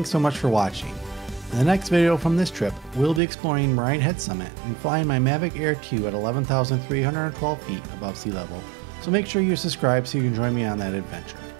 so much for watching. In the next video from this trip, we'll be exploring Moraine Head Summit and flying my Mavic Air 2 at 11,312 feet above sea level, so make sure you subscribe so you can join me on that adventure.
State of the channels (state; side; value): drops out; left; at 3.2 s